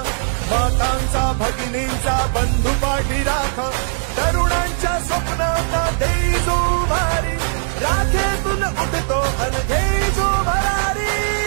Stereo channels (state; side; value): silent; left; digital silence